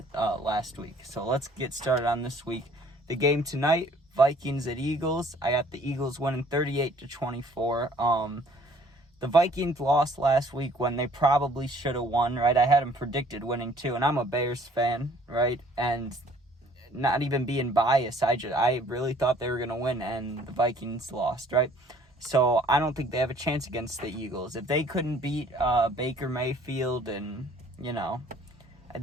last week. So, let's get started on this week. The game tonight, Vikings at Eagles. I got the Eagles winning 38-24. The Vikings lost last week when they probably should have won, right? I had them predicted winning too, and I'm a Bears fan, right? And not even being biased, I really thought they were going to win, and the Vikings lost, right? So I don't think they have a chance against the Eagles. If they couldn't beat Baker Mayfield and,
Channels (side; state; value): both; normal; correlation 0.57